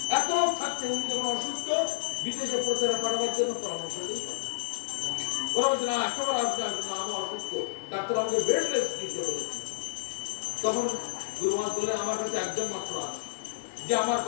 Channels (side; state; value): right; silent; digital silence